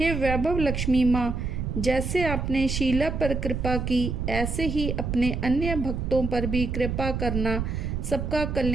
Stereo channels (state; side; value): noise; right; rumble, 3 dB below the sound